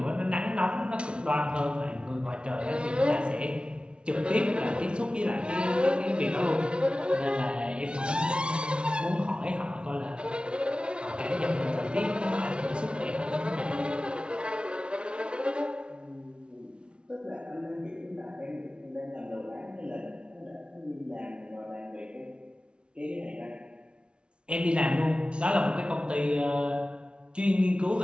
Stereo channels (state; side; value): late; left; 0.057 ms